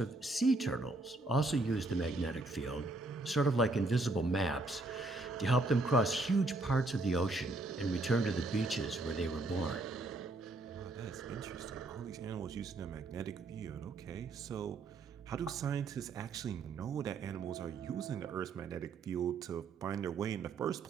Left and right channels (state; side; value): quieter; left; 3.1 dB